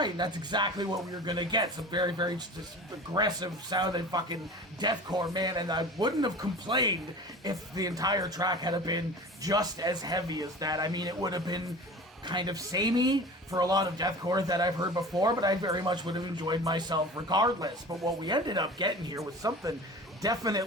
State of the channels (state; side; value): normal; both; correlation 0.38